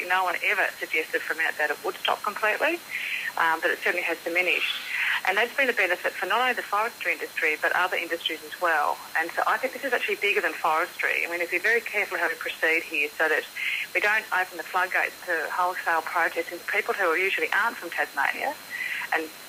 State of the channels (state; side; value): identical; both; correlation 1.00